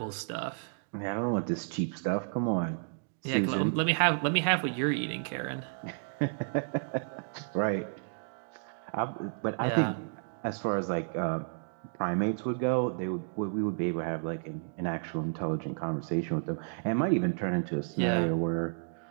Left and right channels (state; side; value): silent; left; digital silence